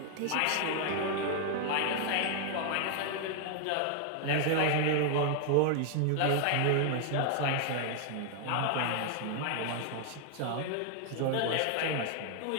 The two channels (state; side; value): different; both; correlation 0.00